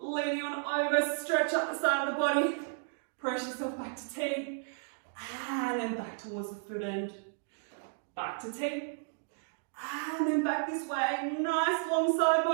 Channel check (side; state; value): left; silent; digital silence